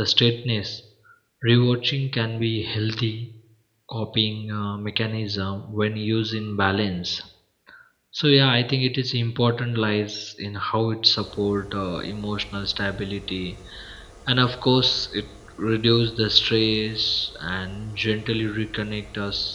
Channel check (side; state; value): both; identical; correlation 1.00